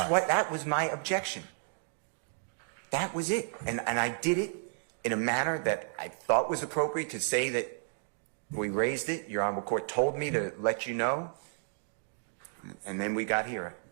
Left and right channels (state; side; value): silent; left; digital silence